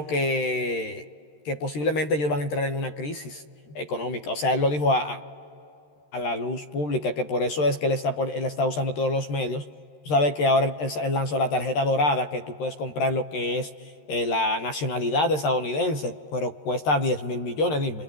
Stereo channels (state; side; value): late; right; 13 ms